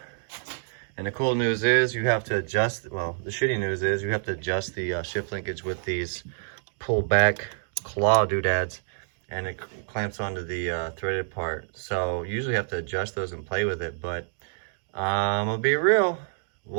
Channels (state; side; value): silent; left; digital silence